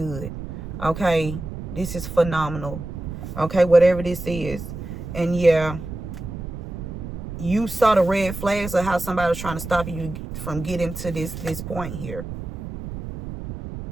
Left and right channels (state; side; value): noise; right; rumble, 8 dB below the sound